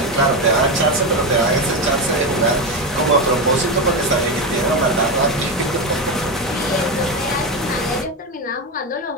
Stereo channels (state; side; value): normal; both; correlation 0.14